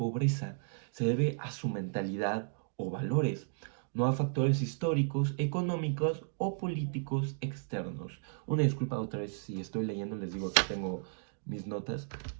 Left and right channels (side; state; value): left; silent; digital silence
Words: Se debe a su mentalidad o valores, no a factores históricos, económicos o políticos externos. Una disculpa otra vez si estoy leyendo, les digo que tengo mis notas,